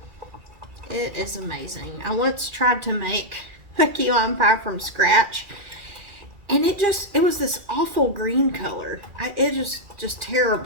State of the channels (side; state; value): left; late; 2.5 ms